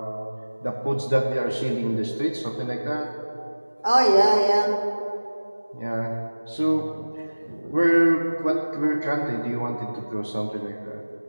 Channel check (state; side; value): inverted; both; correlation -1.00